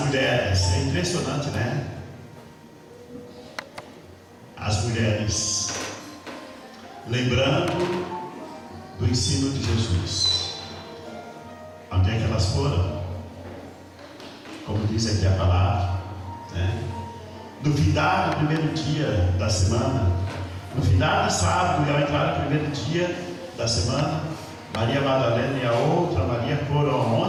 mulheres, é impressionante, né? As mulheres, lembrando do ensino de Jesus, onde é que elas foram? Como diz aqui a palavra, né? No findar do primeiro dia da semana, no findar do sábado e ao entrar no primeiro dia da semana, Maria Madalena e a outra Maria foram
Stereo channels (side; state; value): both; identical; correlation 1.00